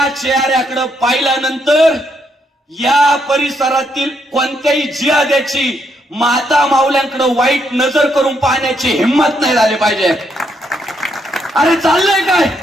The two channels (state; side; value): normal; both; correlation 0.76